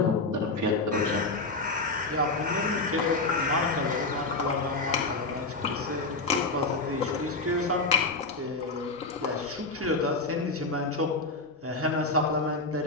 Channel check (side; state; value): right; quieter; 3.4 dB